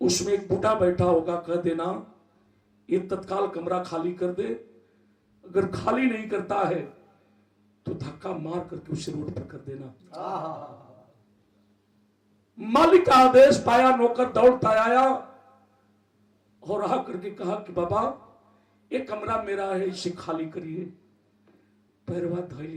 एक बूढ़ा बैठा होगा, कह देना ये तत्काल कमरा खाली कर दे। अगर खाली नहीं करता है तो धक्का मार करके उसे रोड पर कर देना। मालिक का आदेश पाया, नौकर दौड़ता आया और आ करके कहा कि बाबा ये कमरा मेरा है, इसे खाली करिए। पैरवा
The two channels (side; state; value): both; identical; correlation 1.00